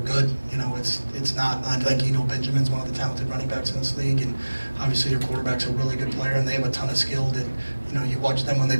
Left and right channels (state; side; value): inverted; both; correlation -1.00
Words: You know, it's not. I think, you know, Benjamin's one of the talented running backs in this league, and obviously their quarterback's a really good player, and they have a ton of skill. That, you know, you watch them when they